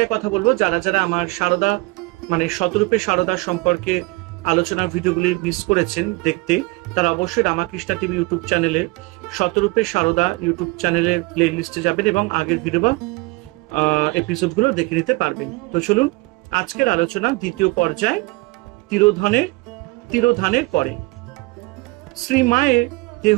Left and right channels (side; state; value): left; quieter; 24.7 dB